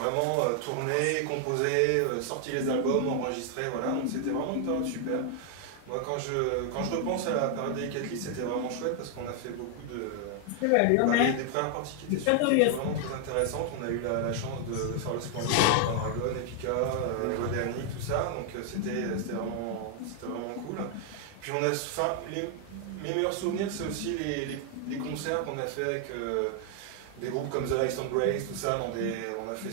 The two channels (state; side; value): different; both; correlation 0.00